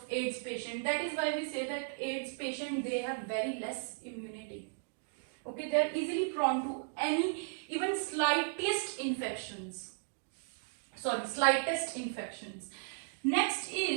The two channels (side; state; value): left; silent; digital silence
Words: AIDS patient. That is why we say that AIDS patient, they have very less immunity. Okay, they are easily prone to any, even slightest infections. Next